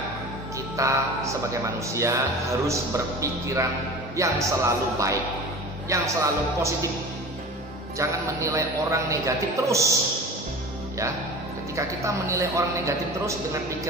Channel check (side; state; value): both; normal; correlation 0.36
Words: kita sebagai manusia harus berpikiran yang selalu baik, yang selalu positif. Jangan menilai orang negatif terus. Ya, ketika kita menilai orang negatif terus dengan